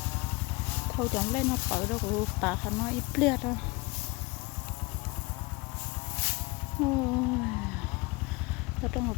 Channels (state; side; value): quieter; right; 25.2 dB